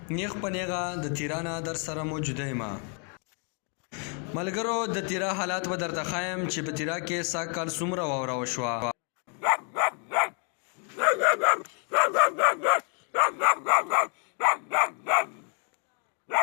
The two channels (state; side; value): quieter; right; 39.5 dB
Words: نیغ په نیغه د تیرانه در سره موجوده یم. ملګرو د تیرا حالات به درته ښایم چې په تیرا کې سږ کال څومره واوره وشوه.